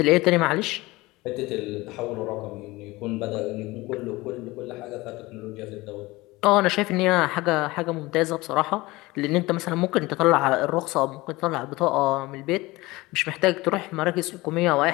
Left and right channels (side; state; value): right; quieter; 20.9 dB